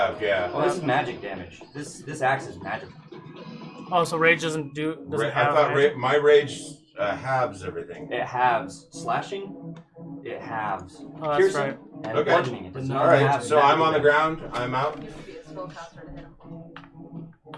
Yeah. Oh, this is magic damage. This axe is magic. Oh, so rage doesn't I have thought magic? my rage halves everything. It halves slashing. It halves Oh, that's piercing right. and Okay. bludgeoning. It does All not right. have So magic I'm on the damage. ground. I'm out. You would be a spellcaster to hit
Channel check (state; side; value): identical; both; correlation 1.00